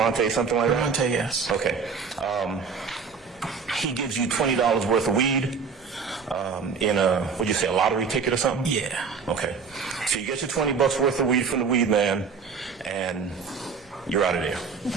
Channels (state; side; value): quieter; left; 5.5 dB